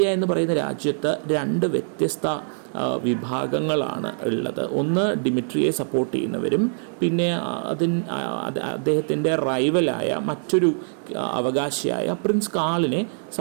എന്ന് പറയുന്ന രാജ്യത്ത് രണ്ട് വ്യത്യസ്ത വിഭാഗങ്ങളാണ് ഉള്ളത്. ഒന്ന് ഡിമിട്രിയെ സപ്പോർട്ട് ചെയ്യുന്നവരും പിന്നെ അദ്ദേഹത്തിൻ്റെ റൈവലായ മറ്റൊരു അവകാശിയായ പ്രിൻസ് കാളിനെ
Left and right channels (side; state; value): left; silent; 63 dB below the other